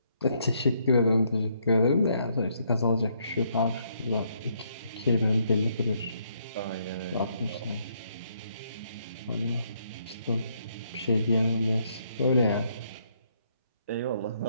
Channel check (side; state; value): both; inverted; correlation -0.72